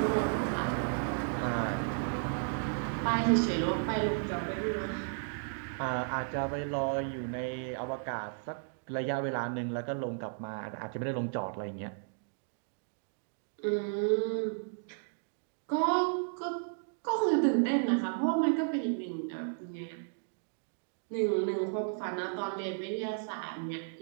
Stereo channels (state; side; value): silent; left; digital silence